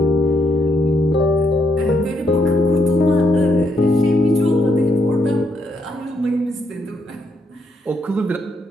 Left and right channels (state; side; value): normal; both; correlation 0.76